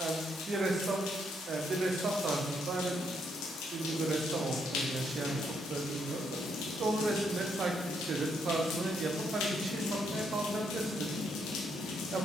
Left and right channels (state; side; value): normal; both; correlation 0.75